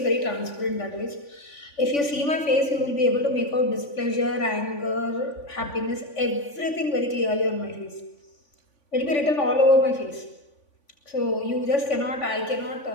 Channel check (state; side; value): late; right; 3.5 ms